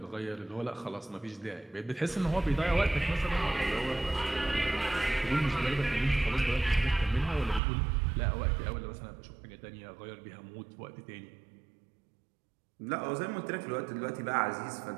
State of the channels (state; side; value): drops out; left; at 7.6 s